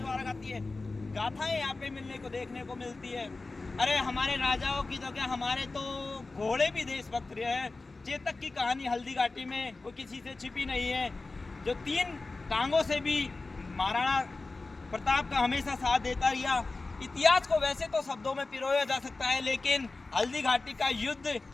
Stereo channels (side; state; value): right; quieter; 3.5 dB